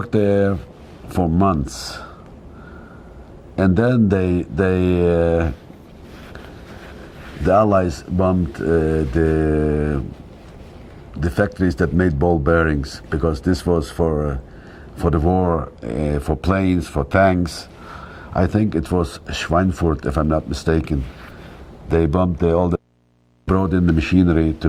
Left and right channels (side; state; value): both; identical; correlation 1.00